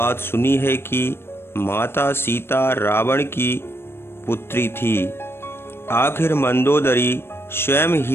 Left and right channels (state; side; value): late; right; 0.12 ms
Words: सुनी है कि माता सीता रावण की पुत्री थी? आखिर मंदोदरी स्वयं